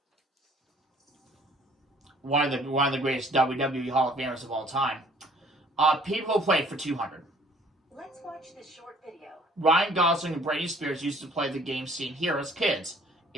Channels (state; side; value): normal; both; correlation 0.57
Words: One of the greatest WWE Hall of Famers of all time. People who played for 200. Let's watch this short video. Ryan Gosling and Britney Spears used to play the game seen here as kids.